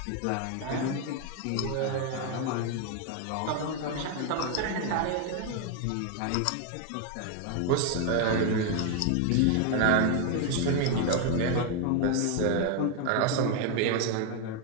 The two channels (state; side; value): different; both; correlation 0.01